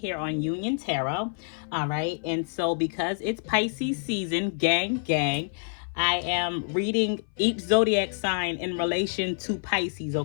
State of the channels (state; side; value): silent; right; 60 dB below the other